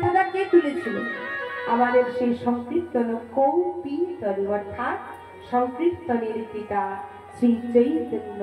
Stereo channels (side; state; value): both; identical; correlation 1.00